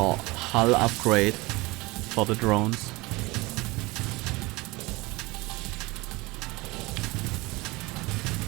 hull upgrade for the drones.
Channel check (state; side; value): quieter; left; 23.0 dB